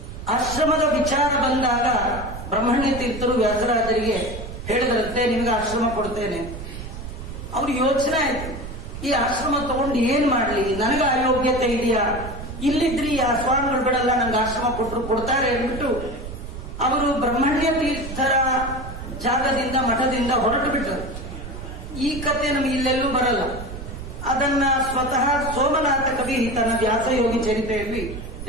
ಆಶ್ರಮದ ವಿಚಾರ ಬಂದಾಗ ಬ್ರಹ್ಮಣ್ಯ ತೀರ್ಥರು ವ್ಯಾಸರಾಜರಿಗೆ ಹೇಳಿದ್ರಂತೆ, ನಿಮಗೆ ಆಶ್ರಮ ಕೊಡ್ತೇನೆ. ಅವ್ರ ಯೋಚನೆ ಆಯ್ತು, ಈ ಆಶ್ರಮ ತಗೊಂಡು ಏನ್ ಮಾಡ್ಲಿ, ನನಗೆ ಅಯೋಗ್ಯತೆ ಇದೆಯಾ, ಇಲ್ಲಿದ್ರಿ ಆ ಸ್ವಾಮಿಗಳು ಬಿಡಲ್ಲ, ನಂಗೆ ಆಶ್ರಮ ಕೊಟ್ಟರು ಕೊಡ್ತಾರೆ ಅಂದ್ಬಿಟ್ಟು ಅವರು ಬ್ರಹ್ಮಣ್ಯ ತೀರ್ಥರ ಜಾಗದಿಂದ ಮಠದಿಂದ ಹೊರಟು ಬಿಟ್ಟರು. ಈ ಕಥೆ ನಮಗೆ ಇಲ್ಲೆಲ್ಲೂ ಬರಲ್ಲ. ಅದನ್ನ ಸ್ವತಃ ಸೋಮನಾಥ ಕವಿ ತನ್ನ ವ್ಯಾಸಯೋಗಿ ಚರಿತೆಯಲ್ಲಿ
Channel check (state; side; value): noise; right; rumble, 10 dB below the sound